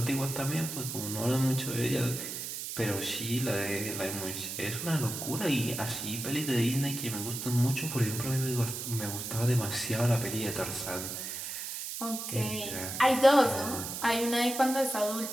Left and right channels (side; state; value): right; noise; hiss, 6 dB below the sound